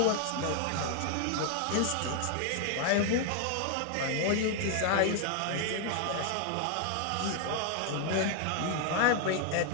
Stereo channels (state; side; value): different; both; correlation 0.00